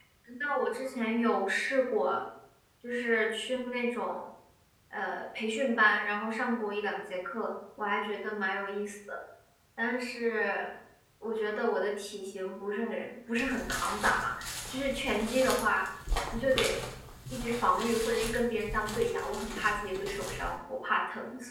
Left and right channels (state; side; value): identical; both; correlation 1.00